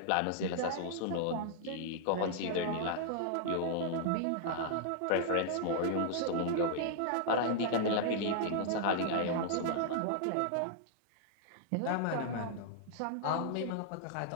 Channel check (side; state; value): both; different; correlation -0.01